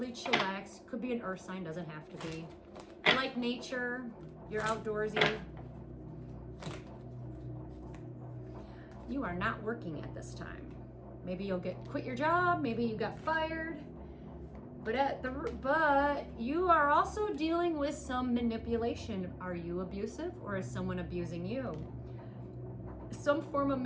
chillax. Could be an earth sign, doesn't have to be. You like nature, you're outdoorsy. You are not working at this time. Maybe you'll quit your job, maybe you got fired. But you are also dealing with some manipulation. Are you abusive or is someone abusing you? Some form of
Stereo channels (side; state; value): both; identical; correlation 1.00